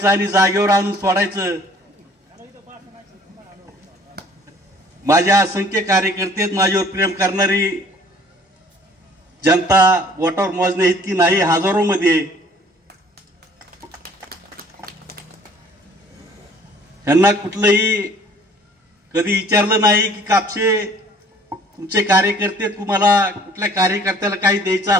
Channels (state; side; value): normal; both; correlation 0.54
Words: आणि जागेवर आणून सोडायचं। माझ्या असंख्य कार्यकर्ते, माझ्यावर प्रेम करणारी जनता बोटावर मोजणे इतकी नाही, हजारो मध्ये। त्यांना कुठलंही कधी विचारलं नाही की कापसे तुमचे कार्यकर्ते, तुम्हाला कुठल्या कार्यकर्त्याला काही द्यायचं